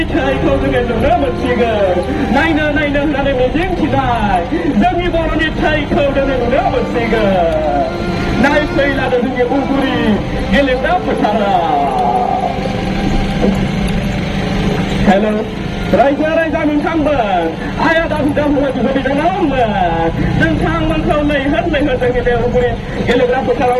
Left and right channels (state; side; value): identical; both; correlation 1.00